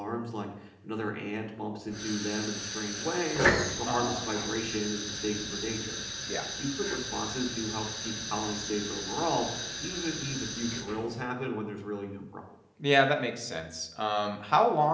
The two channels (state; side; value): identical; both; correlation 1.00